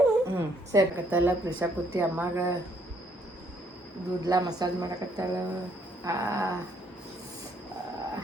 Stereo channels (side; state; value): both; normal; correlation 0.67